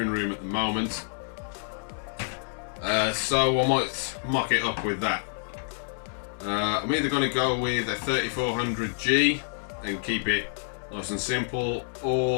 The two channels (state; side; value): silent; right; 60 dB below the other